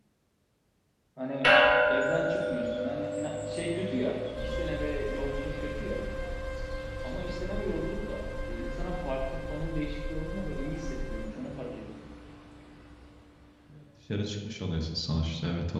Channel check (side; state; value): both; identical; correlation 1.00